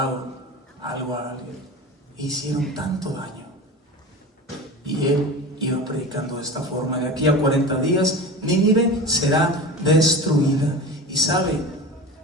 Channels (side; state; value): both; normal; correlation 0.31